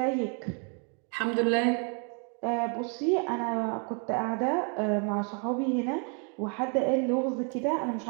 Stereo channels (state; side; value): quieter; left; 39.4 dB